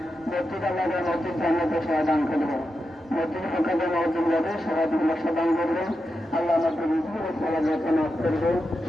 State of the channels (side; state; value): both; normal; correlation 0.88